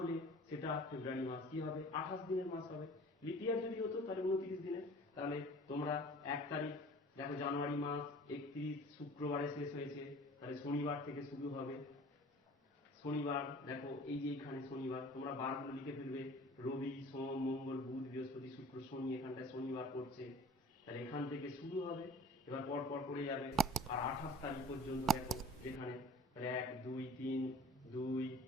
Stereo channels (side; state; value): both; normal; correlation 0.46